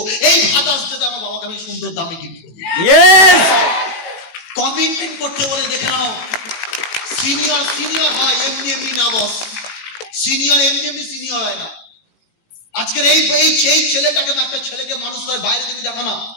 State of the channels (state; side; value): late; right; 18 ms